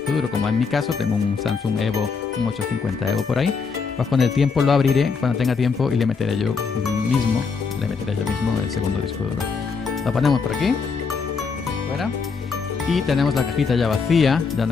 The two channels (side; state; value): right; quieter; 5.2 dB